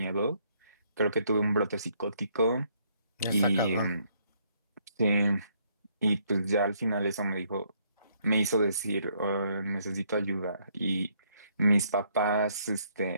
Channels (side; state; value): both; inverted; correlation -0.69